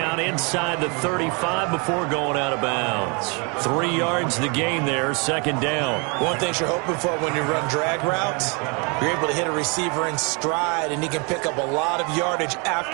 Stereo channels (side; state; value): left; quieter; 32.4 dB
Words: inside the 35 before going out of bounds. 3 yards the gain there, 2nd down. One thing you're hoping for when you run drag routes, you're able to hit a receiver in stride, and he can pick up a lot of yardage